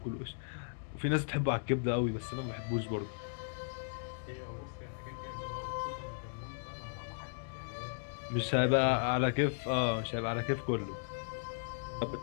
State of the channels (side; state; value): right; silent; digital silence